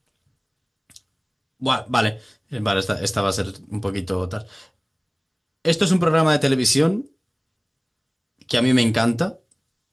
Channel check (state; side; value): identical; both; correlation 1.00